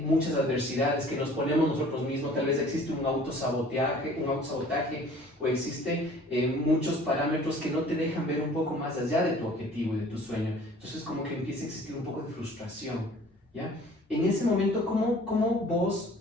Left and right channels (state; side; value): normal; both; correlation 0.50